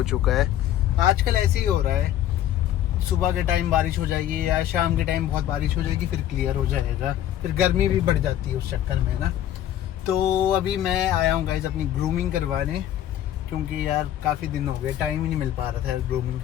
चुका है। आजकल ऐसे ही हो रहा है, सुबह के टाइम बारिश हो जाएगी या शाम के टाइम बहुत बारिश हो जाएगी, फिर क्लियर हो जाएगा, फिर गर्मी भी बढ़ जाती है उस चक्कर में ना। तो अभी मैं आया हूँ गाइस अपनी ग्रूमिंग करवाने, क्योंकि यार काफ़ी दिन हो गए, टाइम ही नहीं मिल पा रहा था ग्रूमिंग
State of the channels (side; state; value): right; quieter; 11.9 dB